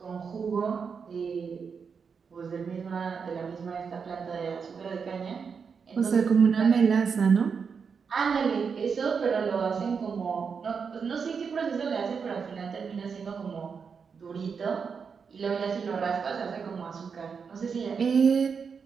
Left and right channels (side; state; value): left; quieter; 5.9 dB